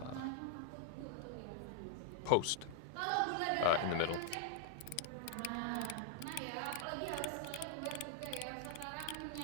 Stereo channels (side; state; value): both; different; correlation 0.00